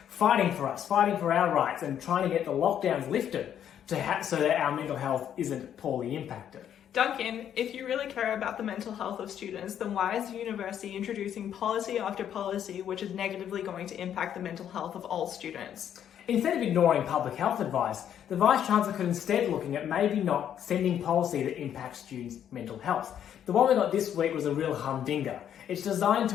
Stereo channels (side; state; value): right; quieter; 9.7 dB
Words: fighting for us, fighting for our rights and trying to get the lockdowns lifted so that our mental health isn't poorly impacted. Duncan, if you really care about the mental health of students, then why is the university introducing policy after policy which is negatively going to impact the mental health of all students? Instead of ignoring public health advice, the Vice-Chancellor could instead looking at maybe not sending policy that impacts students' mental health. The one we got this week was a real humdinger. It's designed